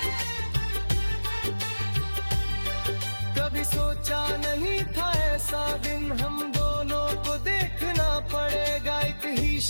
कभी सोचा नहीं था ऐसा दिन हम दोनों को देखना पड़ेगा। एक ही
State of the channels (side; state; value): both; inverted; correlation -1.00